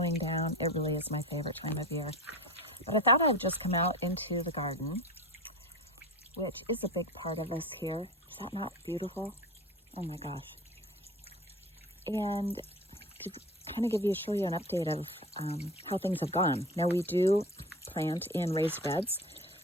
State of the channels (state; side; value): normal; both; correlation 0.33